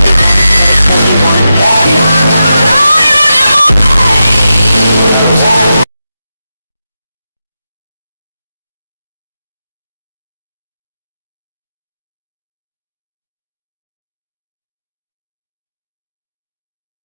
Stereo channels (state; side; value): inverted; both; correlation -0.89